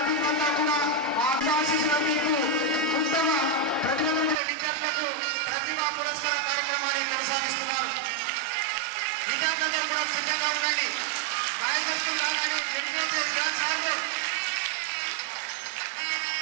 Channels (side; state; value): left; drops out; at 4.4 s